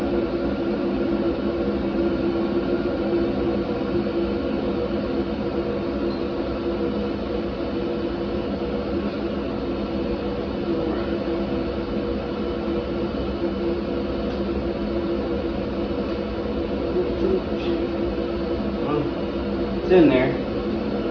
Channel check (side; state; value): both; identical; correlation 1.00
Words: It's in there.